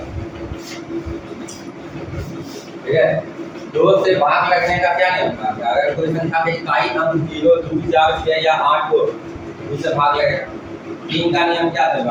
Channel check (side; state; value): both; identical; correlation 1.00